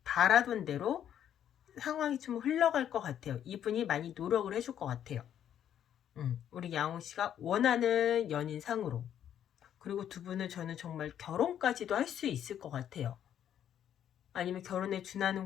바라던 대로 상황이 좀 흘러갈 것 같아요. 이분이 많이 노력을 해줄 것 같아요. 우리 양호씨가 원하는 연인상으로. 그리고 두 분은 저는 정말 결혼까지도 할 수 있을 것 같아요. 아니면 결혼에 준하는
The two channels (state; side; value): quieter; right; 10.0 dB